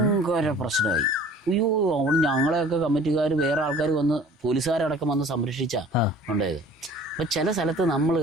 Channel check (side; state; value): both; normal; correlation 0.48